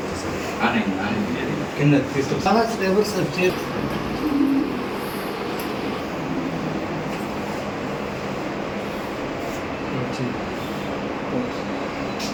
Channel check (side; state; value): both; identical; correlation 1.00